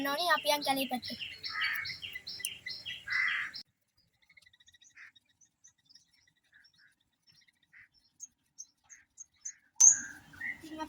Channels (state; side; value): identical; both; correlation 1.00